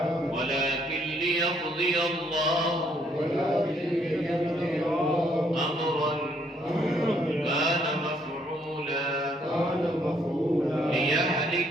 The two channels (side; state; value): both; normal; correlation 0.68